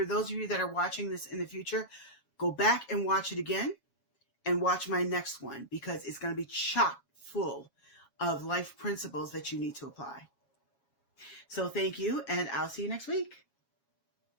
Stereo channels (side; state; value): right; late; 8.1 ms